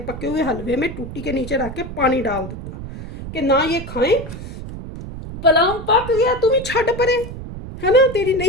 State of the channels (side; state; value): right; noise; rumble, 10 dB below the sound